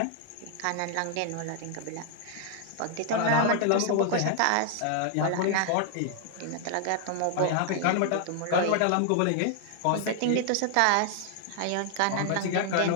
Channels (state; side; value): different; both; correlation 0.00